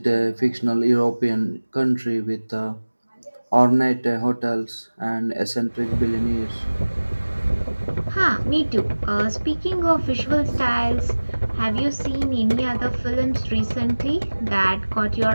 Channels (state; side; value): inverted; both; correlation -1.00